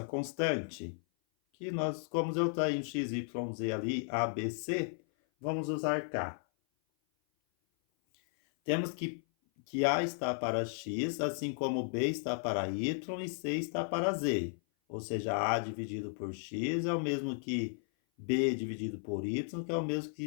constante, que nós, como eu tenho x, y, z ali, a, b, c, vamos usar k. Temos que A está para X, assim como B está para Y e C está para Z. Ou seja, A dividido por X é o mesmo que B dividido por Y, que é o mesmo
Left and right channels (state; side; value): silent; right; 55 dB below the other